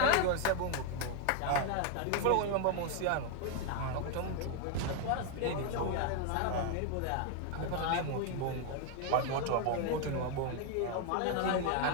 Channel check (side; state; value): both; different; correlation 0.01